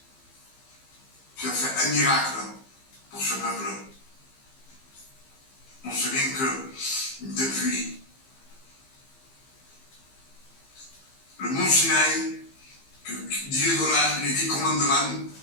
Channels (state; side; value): late; right; 15 ms